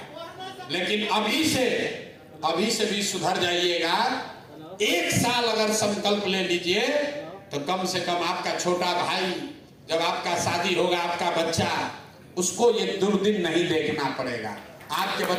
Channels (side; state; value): both; identical; correlation 1.00